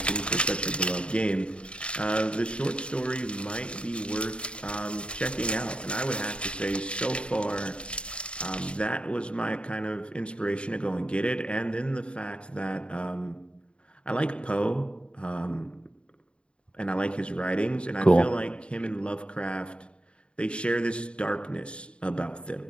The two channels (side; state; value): right; late; 0.056 ms